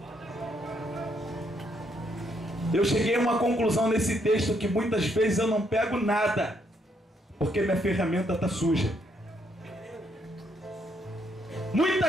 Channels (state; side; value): normal; both; correlation 0.73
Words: Eu cheguei a uma conclusão nesse texto que muitas vezes eu não pego nada, porque minha ferramenta está suja.